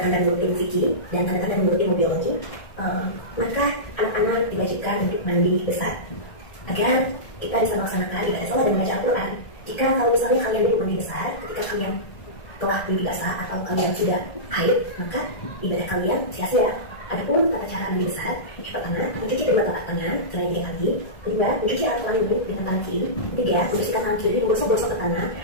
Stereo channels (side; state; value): right; late; 1.7 ms